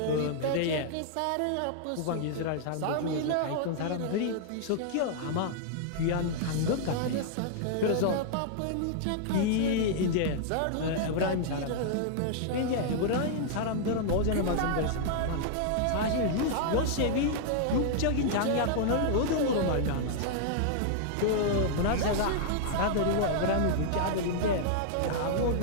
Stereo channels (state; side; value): different; both; correlation -0.01